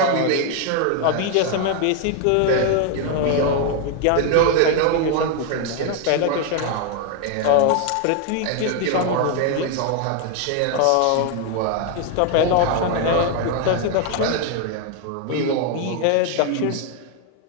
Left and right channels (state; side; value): different; both; correlation 0.01